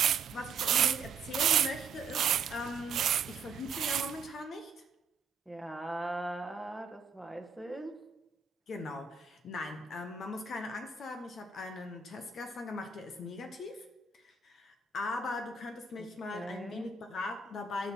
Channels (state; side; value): quieter; left; 4.8 dB